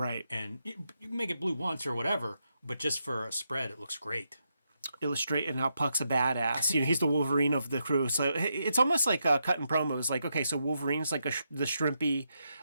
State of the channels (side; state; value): both; inverted; correlation -0.82